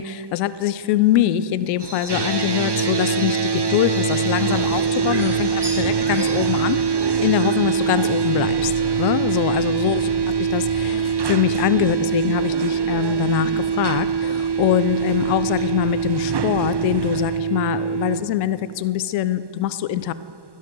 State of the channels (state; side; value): late; left; 1.1 ms